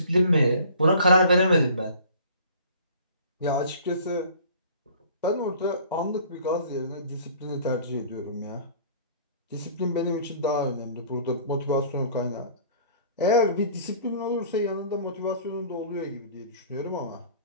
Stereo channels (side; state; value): both; inverted; correlation -0.48